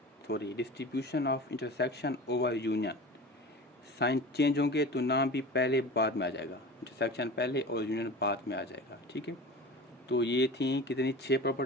of intersection over union. Sign change होंगे तो नाम भी पहले बाद में आ जाएगा, इंटरसेक्शन पहले और यूनियन बाद में आ जाएगा। ठीक है, तो ये थी कितनी 6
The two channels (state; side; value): normal; both; correlation 0.34